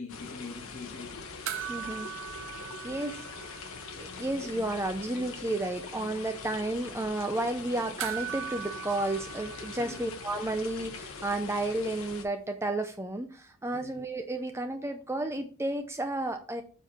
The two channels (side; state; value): both; normal; correlation 0.64